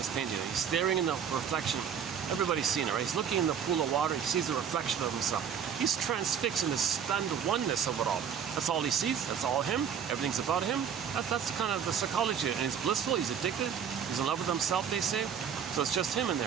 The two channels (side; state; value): left; quieter; 7.8 dB